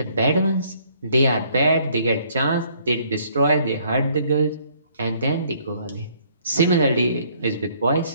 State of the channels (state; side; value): inverted; both; correlation -0.64